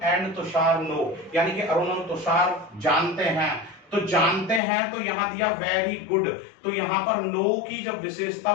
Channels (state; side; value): drops out; right; at 4.6 s